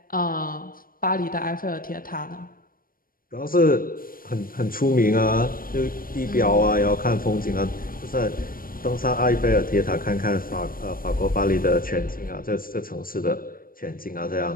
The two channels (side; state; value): right; late; 0.41 ms